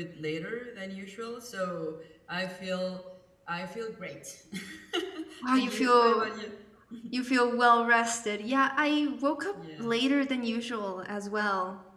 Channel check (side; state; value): both; identical; correlation 1.00